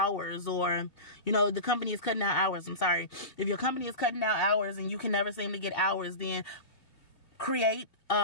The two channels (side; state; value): right; late; 2.0 ms